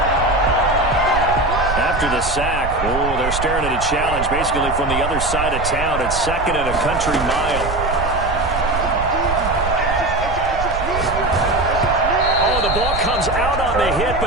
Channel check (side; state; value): right; noise; rumble, 7 dB below the sound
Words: After the sack, they're staring at a challenge basically from the other side of town. It's second and a country mile. The ball comes out on the hit,